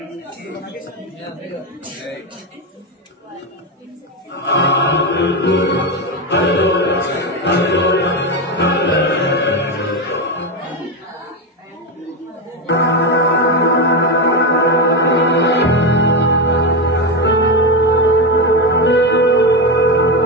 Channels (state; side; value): normal; both; correlation 0.12